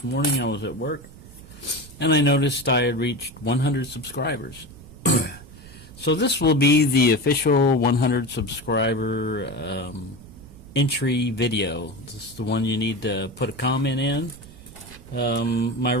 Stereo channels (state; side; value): noise; right; rumble, 19 dB below the sound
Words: morning I was at work and I noticed I had reached 100 subscribers. So this will be the official 100 subscriber entry video. This is the one you need to put a comment in. My